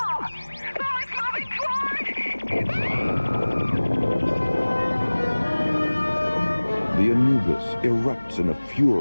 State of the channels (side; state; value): both; inverted; correlation -1.00